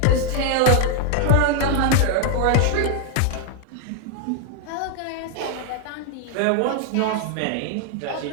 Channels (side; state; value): both; different; correlation 0.00